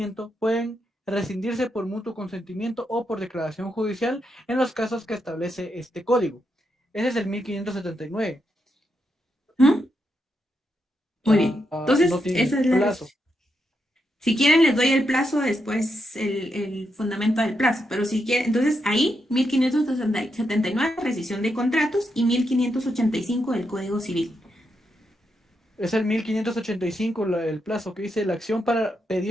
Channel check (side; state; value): both; normal; correlation 0.83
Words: pueden rescindirse por mutuo consentimiento o por declaración judicial en los casos que establece este código. Ese es el 1579. ¿Mm? Muy bien. Entonces, no tiene esa es la plazo. Si quieren, les doy el plazo después, el fundamento del plazo. Pero si quieren, entonces ahí, 1579, rescisión de contratos, y 1585 del Código Civil. Es el 1585 el plazo que dice la acción para